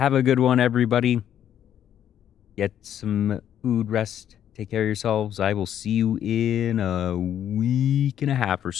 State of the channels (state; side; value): quieter; right; 10.2 dB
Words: a good one, everybody. Get some food, rest, take care of yourselves. I will see you in a week and a half or